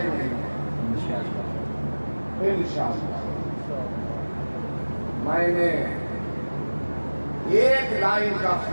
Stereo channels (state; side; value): inverted; both; correlation -1.00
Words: نہیں انشاءاللہ. میں نے ایک لائن کا